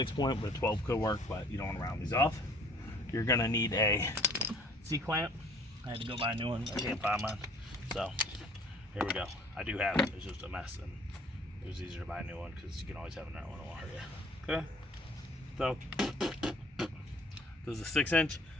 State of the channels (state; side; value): normal; both; correlation 0.54